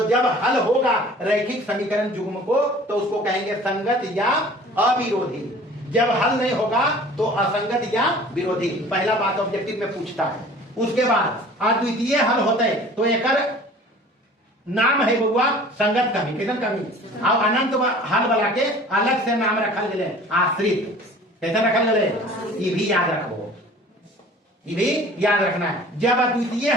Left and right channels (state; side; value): normal; both; correlation 0.46